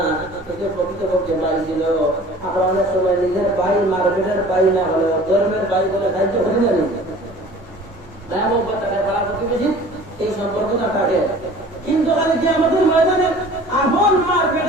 কিন্তু প্রকৃতপক্ষে ভাই ছিল আমরা অনেক সময় নিজের ভাই মার্কেটের ভাই না হলেও ধর্মের ভাই বলে সাহায্য করি না এই সম্পর্কটা কাটে। কিন্তু খালি কি আমাদের ময়দানে আপন মা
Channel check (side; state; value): both; normal; correlation 0.46